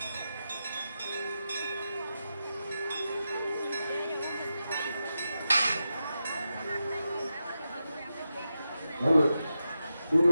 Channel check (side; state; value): both; inverted; correlation -0.89